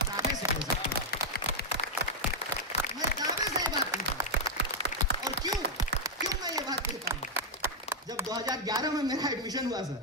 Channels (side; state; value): both; normal; correlation -0.01